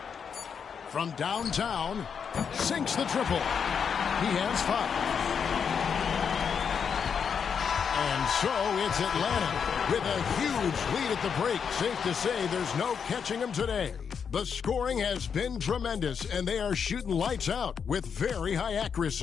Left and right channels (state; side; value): quieter; right; 6.8 dB